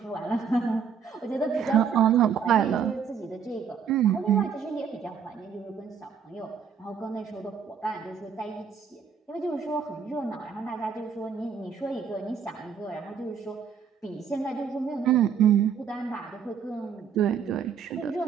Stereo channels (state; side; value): quieter; left; 6.9 dB